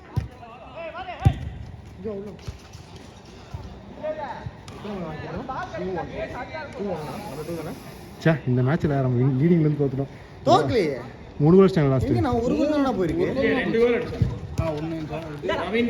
இந்த மேட்ச்ல நம்ம லீடிங்ல இருந்து தோத்துட்டோம். தோக்கலையே. 3 கோல் ஸ்டாண்ட் லாஸ்ட். நான் ஒரு கோல் தான போயிருக்கு. 2 கோல் அடிச்சேன். ஒண்ணு நவீன்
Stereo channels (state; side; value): identical; both; correlation 1.00